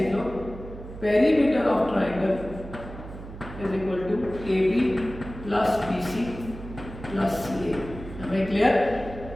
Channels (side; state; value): right; noise; hum, 13 dB below the sound